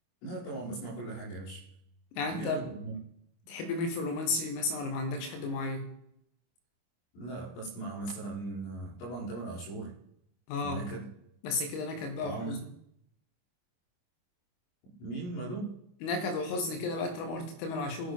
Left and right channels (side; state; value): right; late; 25 ms